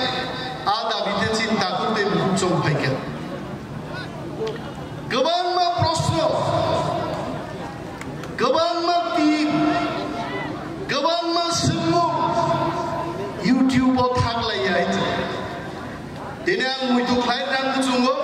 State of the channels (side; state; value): both; identical; correlation 1.00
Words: आ दाबिते चिंता करते बुचम फायके गोबां प्रश्न गोबां टीम गोबां सोंमु यूट्यूबाव थागलायो दिनै आं मैथु खायनांगौ जोङो